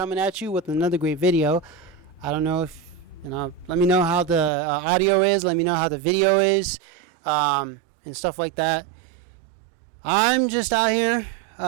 at you with another great video. I don't know if let me know how the audio is. Let me know how the video is, and stuff like that. I'm just out here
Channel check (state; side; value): drops out; left; at 4.5 s